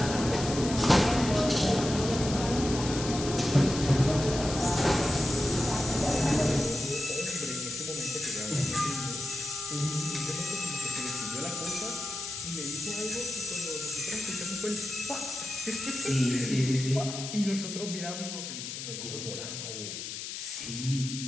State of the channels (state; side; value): noise; left; hiss, 7 dB below the sound